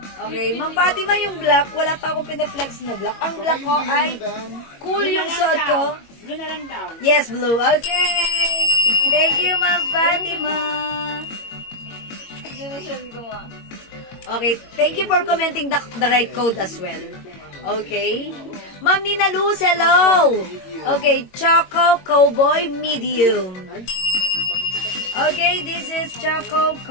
Okay, Ma'am Fatima, yung black, wala pa akong pinaflex na black. Ang black ko ay cool yung suot ko. Blue na lang daw. Yes, blue. Okay. Thank you, Ma'am Fatima. Okay, thank you for commenting the right code as well. Okay. Ma'am Nina Luz, hello. Okay, Choco Cowboy Medium. Okay, this is Choco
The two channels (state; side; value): late; right; 22 ms